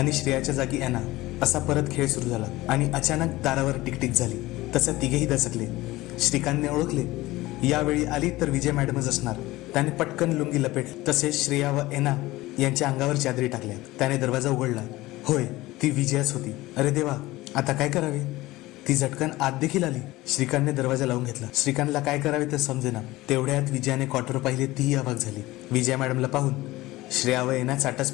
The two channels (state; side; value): quieter; right; 18.7 dB